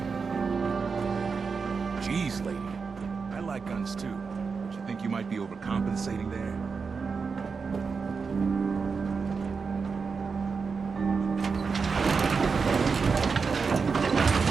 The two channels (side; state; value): left; quieter; 5.2 dB